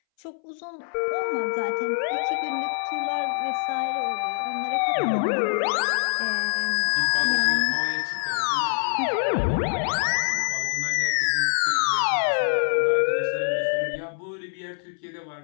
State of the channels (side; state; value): right; silent; 62 dB below the other